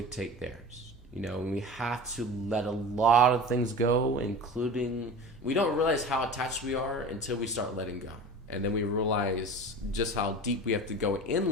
theirs. We have to let a lot of things go, including, we don't realize how attached we are until we start letting go. And then we realize just how deep we have to go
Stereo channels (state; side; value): normal; both; correlation 0.35